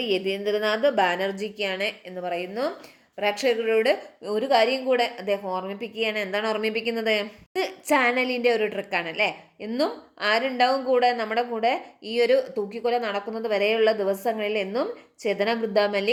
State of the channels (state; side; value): identical; both; correlation 1.00